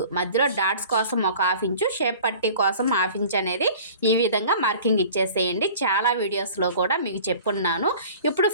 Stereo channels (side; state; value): both; inverted; correlation -0.44